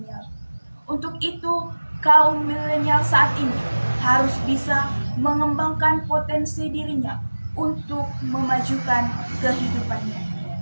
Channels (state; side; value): inverted; both; correlation -1.00